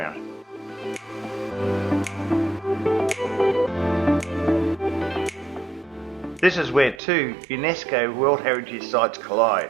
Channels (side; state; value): left; drops out; at 7.0 s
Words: This is where two UNESCO World Heritage Sites collide,